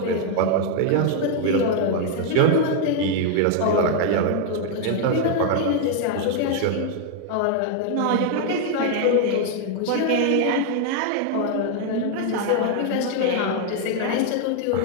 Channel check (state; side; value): different; both; correlation 0.00